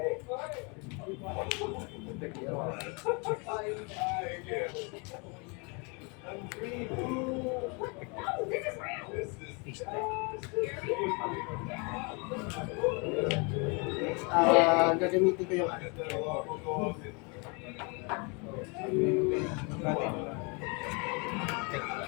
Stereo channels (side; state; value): right; quieter; 32.2 dB